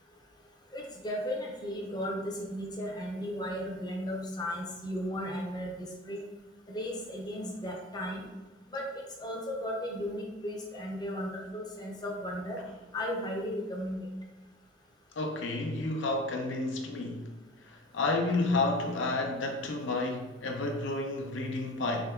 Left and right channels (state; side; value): normal; both; correlation 0.37